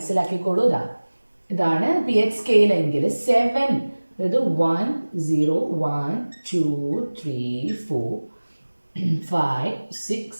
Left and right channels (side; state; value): both; inverted; correlation -1.00